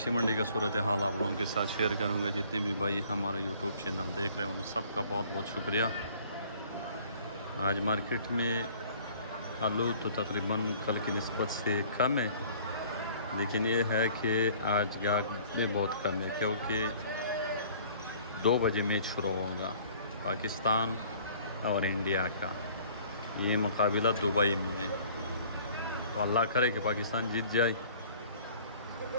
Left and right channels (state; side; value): inverted; both; correlation -0.54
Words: منڈی کا صورتحال آپ لوگوں کے ساتھ شیئر کروں گا۔ جتنے بھی بھائی ہمارا یوٹیوب چینل دیکھ رہے ہیں ان سب کا بہت بہت شکریہ۔ آج مارکیٹ میں آلو تو تقریباً کل کی نسبت سے کم ہے، لیکن یہ ہے کہ آج گاہک میں بہت کم ہے کیونکہ 2 بجے میچ شروع ہوگا پاکستان اور انڈیا کا۔ یہ مقابلہ دبئی میں ہے، تو اللہ کرے کہ پاکستان جیت جائے،